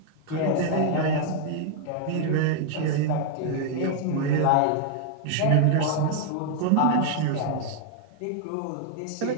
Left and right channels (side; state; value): both; different; correlation 0.00